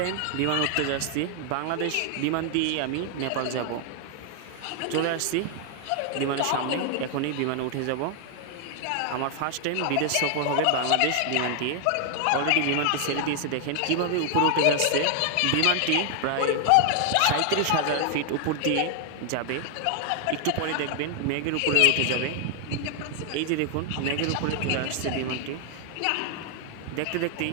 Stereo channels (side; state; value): both; different; correlation 0.00